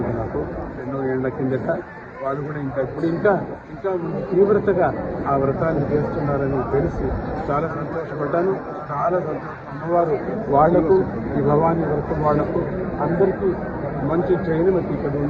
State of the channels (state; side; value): identical; both; correlation 1.00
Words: నాకు ఎన్నో ఏళ్ల కిందట. వాళ్ళు కూడా ఇంకా తీవ్రతగా ఆ వ్రతాన్ని చేస్తున్నారని తెలిసి చాలా సంతోషపడ్డాను. చాలా సంతోషం. అమ్మవారు వాళ్లకు ఈ భవానీ వ్రతం వాళ్లకు అందరికీ మంచి ట్రైన్ మనకి ఇక్కడ